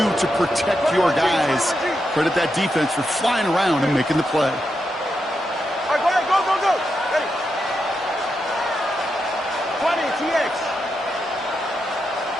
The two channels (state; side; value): normal; both; correlation 0.85